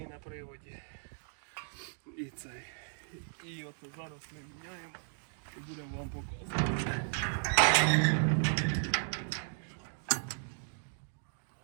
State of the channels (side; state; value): left; silent; digital silence